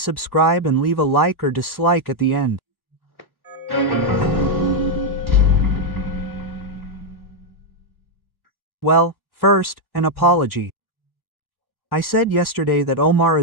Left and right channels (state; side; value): late; right; 1.1 ms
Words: and leave a like or dislike at the end. Well, first, an apology. I said yesterday that Omar